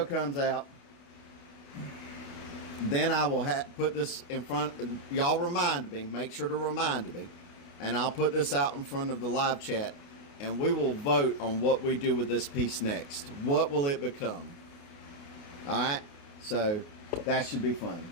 comes out, then I will put this in front. Y'all remind me. Make sure to remind me. And I'll put this out in front of the live chat. And we will vote on what we do with this piece next. What will it become? Alright? So, that should be fun.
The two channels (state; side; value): late; right; 29 ms